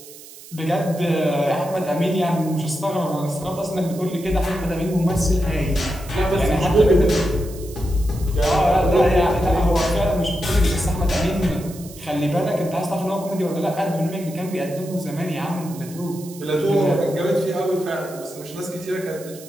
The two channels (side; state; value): right; noise; hiss, 18 dB below the sound